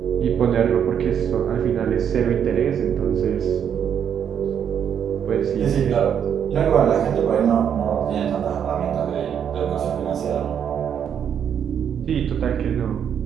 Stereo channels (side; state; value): left; quieter; 8.4 dB